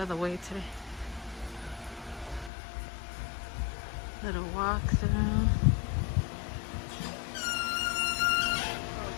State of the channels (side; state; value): right; drops out; at 2.5 s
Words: the way today. Little walk through.